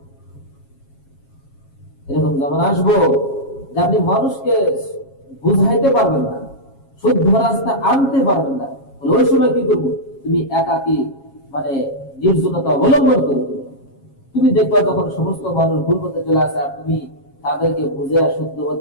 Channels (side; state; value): right; late; 7.3 ms